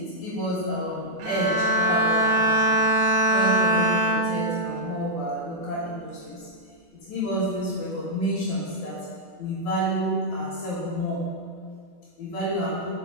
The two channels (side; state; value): both; normal; correlation -0.06